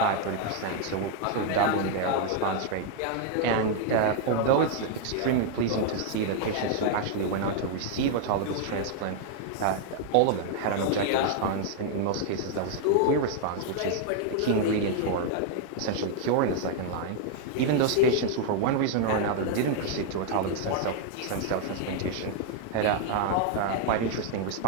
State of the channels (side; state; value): both; different; correlation 0.00